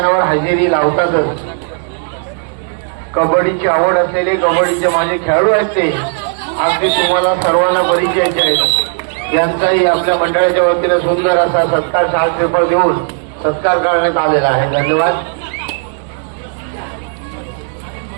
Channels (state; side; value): silent; left; 59 dB below the other